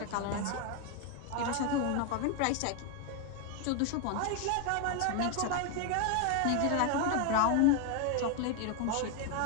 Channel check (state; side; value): different; both; correlation 0.01